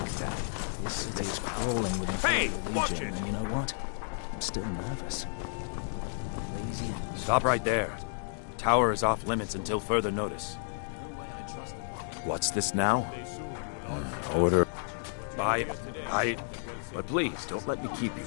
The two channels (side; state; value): right; silent; 57 dB below the other